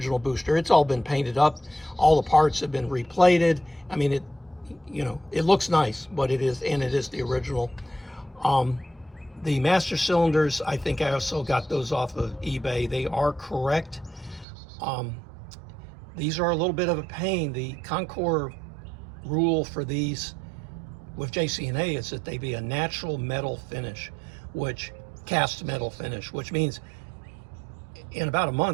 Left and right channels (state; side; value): drops out; left; at 14.5 s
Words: booster. It's all been painted up. All the parts have been replated. I mean, it looks nice, but it is the original. The master cylinders, I think I also got those off of eBay. They are correct. These are a little bit of a pain. The Concours rule for these with JCNA is that they be a natural metal finish, cast metal finish, which means in about a